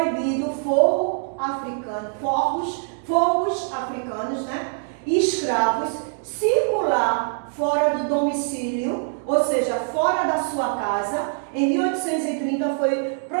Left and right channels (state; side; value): silent; left; digital silence